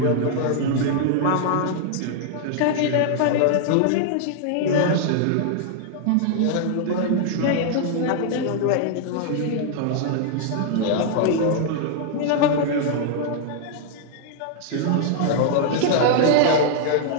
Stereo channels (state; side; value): different; both; correlation -0.01